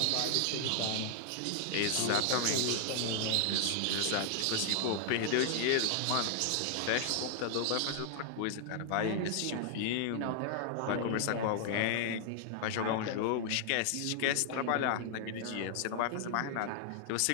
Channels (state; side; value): different; both; correlation 0.00